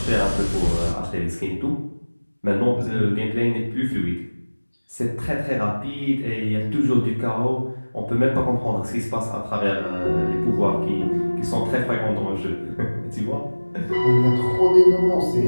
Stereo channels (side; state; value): both; inverted; correlation -1.00